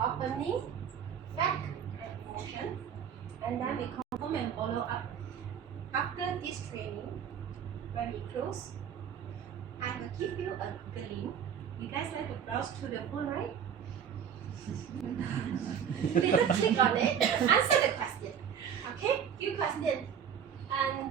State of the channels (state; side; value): quieter; left; 8.2 dB